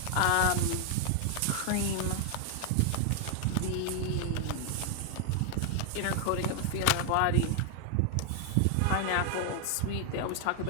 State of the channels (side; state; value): both; different; correlation 0.00